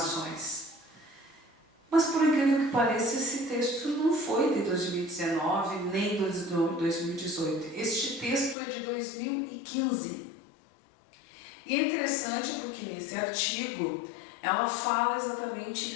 Mas por incrível que pareça, esse texto não foi de 2019 nem de 2018. Este texto é de 2015. E é interessante porque nesse artigo ela fala exatamente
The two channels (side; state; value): right; drops out; at 8.6 s